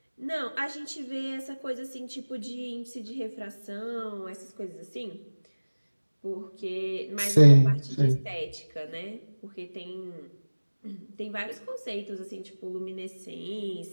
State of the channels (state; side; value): inverted; both; correlation -1.00